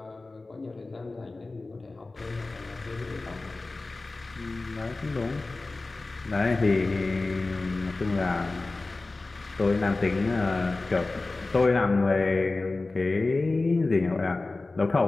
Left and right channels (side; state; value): right; quieter; 3.3 dB